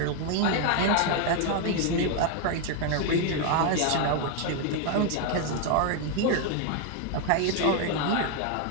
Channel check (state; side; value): different; both; correlation 0.01